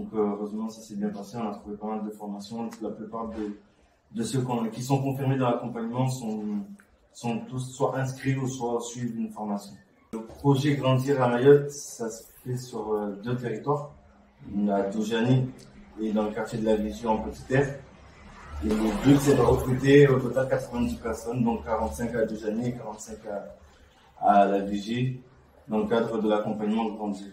heureusement ça s'est bien passé, on a trouvé pas mal de formations. La plupart de ceux qui sont confirmés dans l'accompagnement sont tous soit inscrits ou soit suivent une formation. Le projet Grandir à Mayotte, ça se fait sur 2 territoires, à Doujani et dans le quartier de la Vigie en Petite Terre. Et le but c'est de recruter au total 90 personnes, donc 45 à Doujani et 45 à la Vigie, dans le cadre de l'accompagnement Grandir.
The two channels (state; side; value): identical; both; correlation 1.00